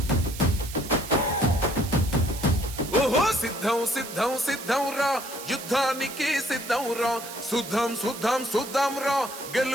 ఓహో సిద్ధం సిద్ధం సిద్ధం రా యుద్ధానికి సిద్ధం రా సుద్ధం సుద్ధం సుద్ధం రా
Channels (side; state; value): right; noise; hiss, 12 dB below the sound